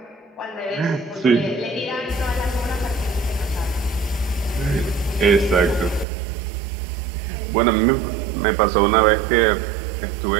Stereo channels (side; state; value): left; drops out; at 6.1 s